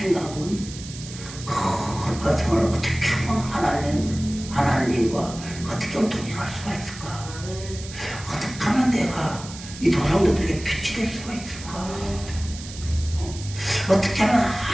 거룩한 생활을 어떻게 하면 하나님과 어떻게 하면 동행할 수가 있을까? 어떻게 하면 내가 이 조상들에게 빛이 될 수가 있을까? 어떻게 하면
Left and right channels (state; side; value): noise; right; hiss, 14 dB below the sound